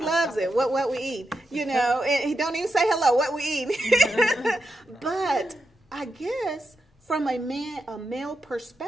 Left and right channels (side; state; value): both; normal; correlation 0.87